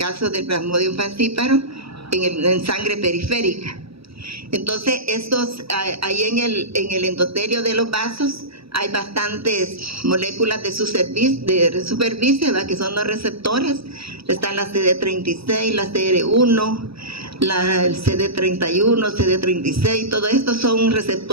del Plasmodium falciparum en sangre periférica. Entonces ahí en el endotelio de los vasos hay bastantes moléculas de superficie, ¿verdad? Que son los receptores. Están la CD36, la CR1, el CD31, CD36, todo esto son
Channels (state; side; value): late; left; 0.77 ms